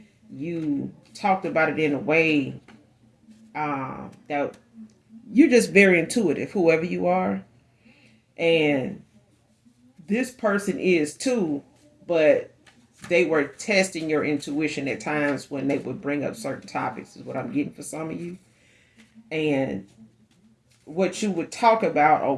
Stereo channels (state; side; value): identical; both; correlation 1.00